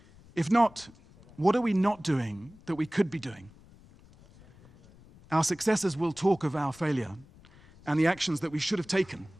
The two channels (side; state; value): left; noise; rumble, 24 dB below the sound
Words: If not, what are we not doing that we could be doing? Our successors will talk of our failure and the actions that we should have taken.